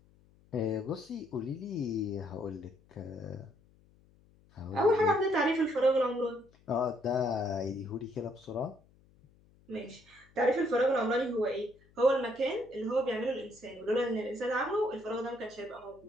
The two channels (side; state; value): left; noise; hum, 29 dB below the sound